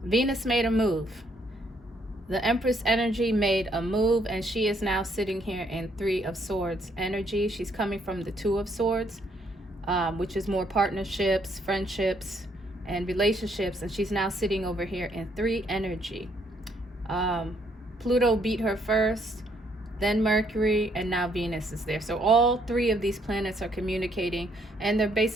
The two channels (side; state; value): both; normal; correlation 0.70